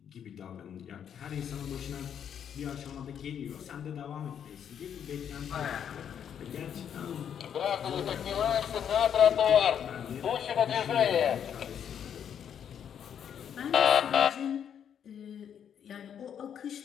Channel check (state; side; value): quieter; right; 8.6 dB